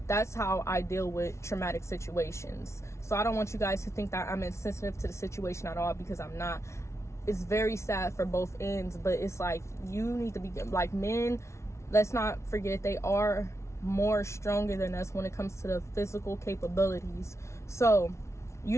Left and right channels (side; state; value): right; late; 0.13 ms